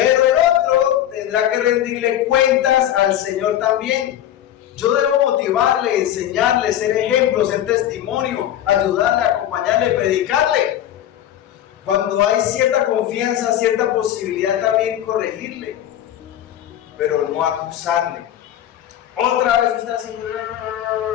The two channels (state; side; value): quieter; right; 11.6 dB